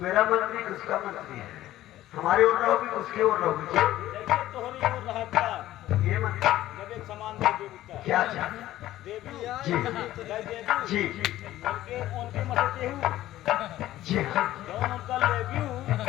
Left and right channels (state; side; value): quieter; right; 14.4 dB